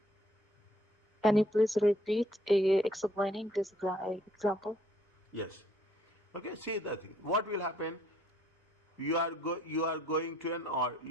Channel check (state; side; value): normal; both; correlation 0.64